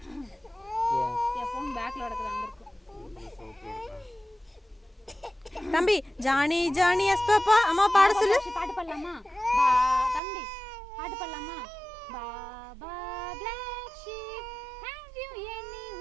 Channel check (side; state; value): left; drops out; at 10.2 s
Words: என் ஃபோன் பேக்ல கிடக்குது, அங்க இருக்கு. தம்பி ஜானி ஜானி எஸ் பாப்பா அம்மா பாட சொல்லு. பாட்டு பாடலாமா தம்பி? பாட்டு பாடலாமா? Baa baa black sheep have you